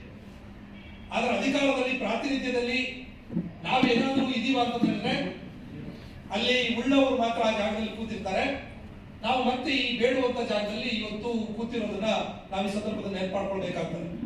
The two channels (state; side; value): identical; both; correlation 1.00